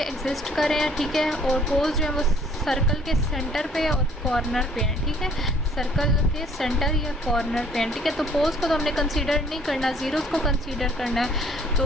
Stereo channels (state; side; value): normal; both; correlation 0.58